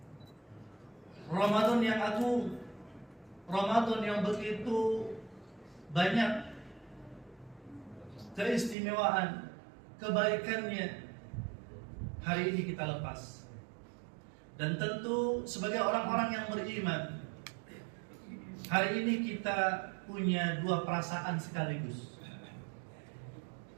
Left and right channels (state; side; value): drops out; left; at 8.8 s